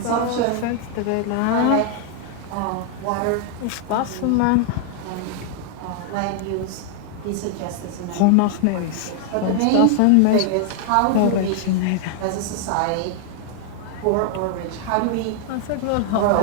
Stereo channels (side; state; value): both; different; correlation 0.00